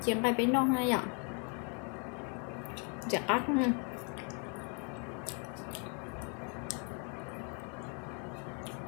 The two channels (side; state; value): right; quieter; 37.9 dB